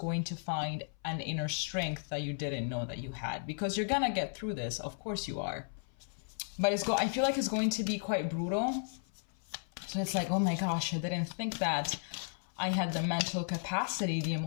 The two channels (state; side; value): silent; right; 55 dB below the other